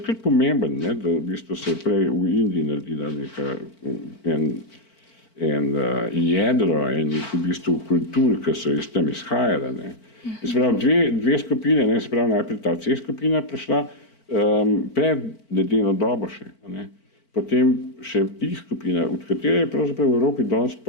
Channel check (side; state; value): right; late; 4.5 ms